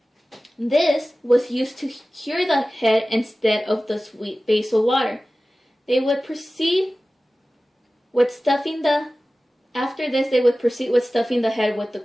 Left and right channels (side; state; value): both; normal; correlation 0.96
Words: This was used to cure the head instead of the sweet basil water. They would proceed with stuffing the head with the